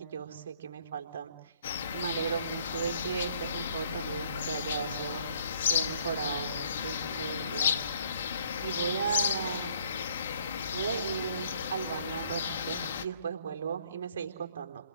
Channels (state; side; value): inverted; both; correlation -0.61